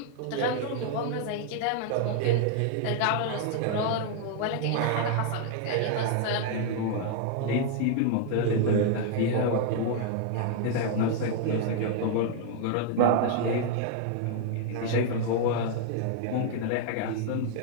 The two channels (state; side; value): different; both; correlation 0.00